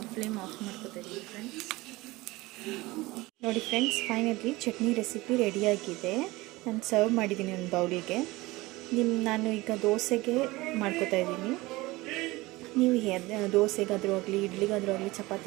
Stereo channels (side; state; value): left; quieter; 20.7 dB